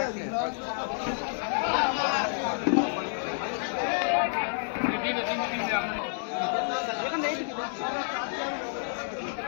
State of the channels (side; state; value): right; silent; digital silence